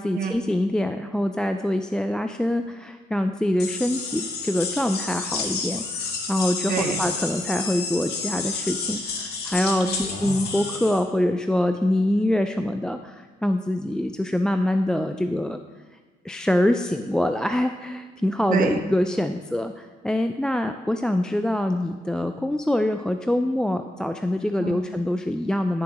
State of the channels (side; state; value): both; normal; correlation 0.86